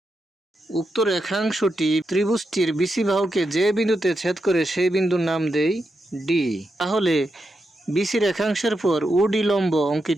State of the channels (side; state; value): both; normal; correlation 0.86